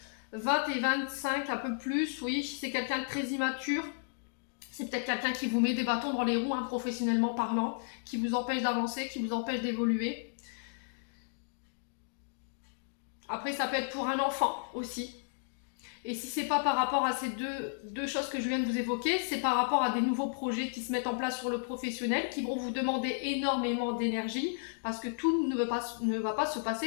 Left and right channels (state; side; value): silent; right; digital silence